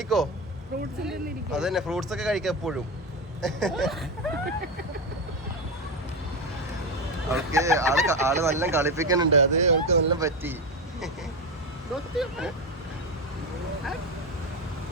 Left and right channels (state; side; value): normal; both; correlation 0.15